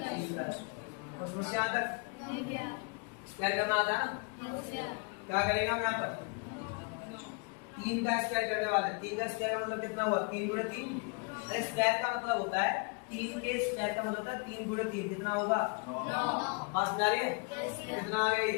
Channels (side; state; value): right; quieter; 34.4 dB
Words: का। और समस्या आ तक स्क्वायर करना आता है ना, क्या करेगा हम यहाँ पर 3 का स्क्वायर करने वाले। 3 का स्क्वायर का मतलब कितना हुआ, 3 गुणे 3। स्क्वायर का मतलब होता है 3 के स्क्वायर का मतलब होता है 3 गुणे 3 कितना होगा 9। बात समझ रही है? कितना आ गया